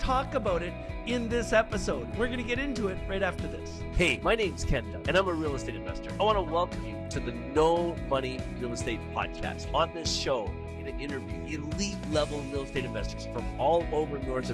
about it in this episode. We're going to get into it right after this. Hey, my name's Condo, and I'm a real estate investor. I want to welcome you to the No Money Real Estate Podcast. On this show, I'm going to interview elite level real estate investors from all over North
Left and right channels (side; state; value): both; identical; correlation 1.00